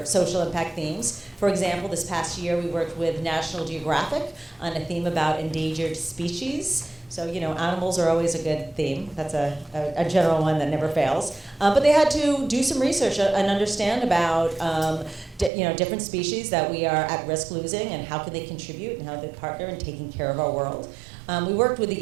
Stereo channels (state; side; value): drops out; left; at 15.5 s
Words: social impact themes. For example, this past year we worked with National Geographic on a theme about endangered species. So, animals are always a good theme. That's a general one that never fails. But they had to do some research and understand about, different species that we are at risk losing and how can they contribute and how they partner in taking care of our world. We worked with